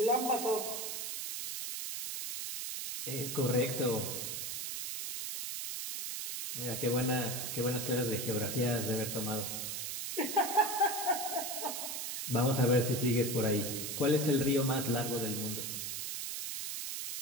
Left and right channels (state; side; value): noise; right; hiss, 4 dB below the sound